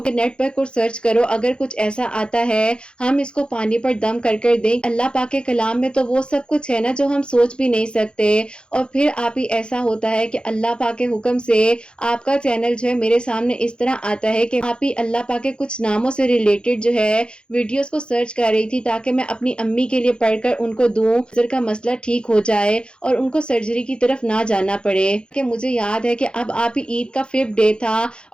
کہ نیٹ پر کچھ سرچ کرو، اگر کچھ ایسا آتا ہے ہم اس کو پانی پر دم کر کر دیں. اللہ پاک کے کلام میں تو وہ سب کچھ ہے نا جو ہم سوچ بھی نہیں سکتے. اور پھر آپ ہی ایسا ہوتا ہے کہ اللہ پاک کے حکم سے آپ کا چینل جو ہے میرے سامنے اس طرح آتا ہے کہ آپ ہی اللہ پاک کے کچھ ناموں سے ریلیٹڈ جو ہے ویڈیوز کو سرچ کر رہی تھی تاکہ میں اپنی امی کے لیے پڑھ کر ان کو دوں، نظر کا مسئلہ ٹھیک ہو جائے اور ان کو سرجری کی طرف نہ جانا پڑے. کہ مجھے یاد ہے کہ اب آپ ہی عید کا 5th ڈے تھا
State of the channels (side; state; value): right; late; 0.053 ms